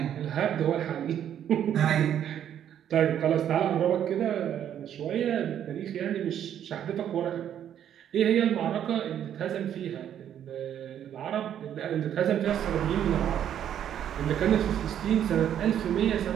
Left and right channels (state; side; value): quieter; left; 10.0 dB